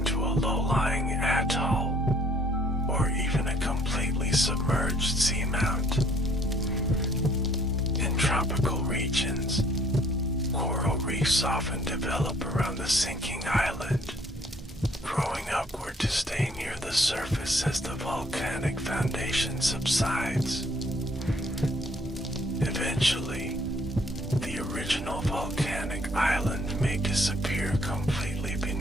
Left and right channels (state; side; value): normal; both; correlation 0.61